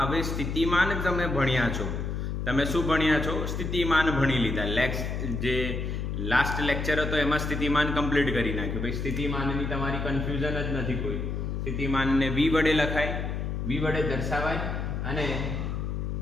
હવે સ્થિતિમાન તમે ભણ્યા છો. તમે શું ભણ્યા છો? સ્થિતિમાન ભણી લીધા. જે લાસ્ટ લેક્ચર હતો એમાં સ્થિતિમાન કમ્પ્લીટ કરી નાખ્યું. ભાઈ સ્થિતિમાનની તમારી કન્ફ્યુઝન જ નથી કોઈ. સ્થિતિમાનને v વડે લખાય, v વડે દર્શાવાય અને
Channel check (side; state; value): left; noise; hum, 3 dB below the sound